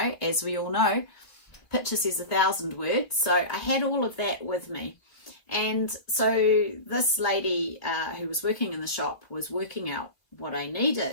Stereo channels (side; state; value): right; late; 2.6 ms